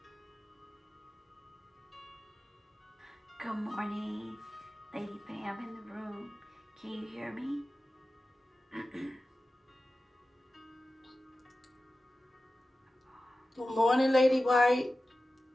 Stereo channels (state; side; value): normal; both; correlation 0.94